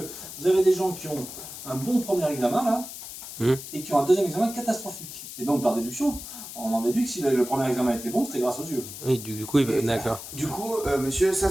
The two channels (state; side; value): noise; left; hiss, 11 dB below the sound